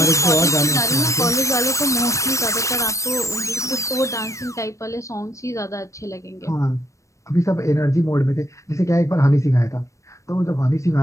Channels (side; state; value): right; late; 0.15 ms